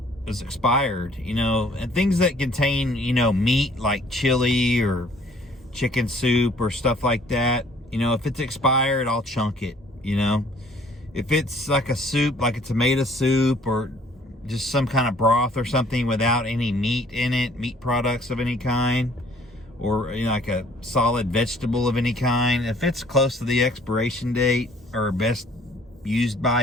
expired, and things that contain, meat like chili or chicken soup or stuff like that. If it's expired, I'll chunk it, If it's like a soup, like a tomato soup or just some kind of broth or something without any meat in it, meat products of any kind, or like a solid vegetable of any kind, if it's close to the expiration date or best used by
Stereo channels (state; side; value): normal; both; correlation 0.58